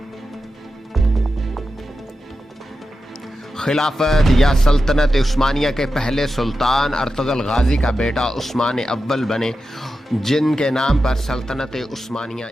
خلافت یا سلطنت عثمانیہ کے پہلے سلطان ارطغرل غازی کا بیٹا عثمان اول بنے، جن کے نام پر سلطنت عثمانیہ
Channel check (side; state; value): both; normal; correlation 0.91